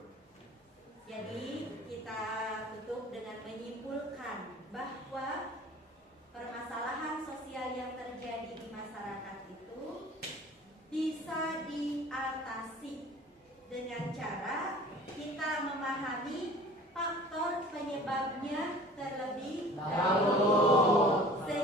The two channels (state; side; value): normal; both; correlation 0.45